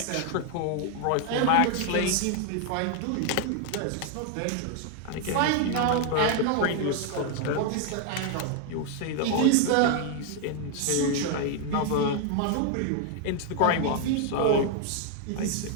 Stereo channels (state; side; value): different; both; correlation 0.00